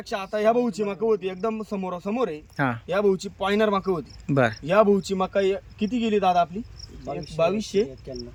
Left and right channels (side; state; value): both; identical; correlation 1.00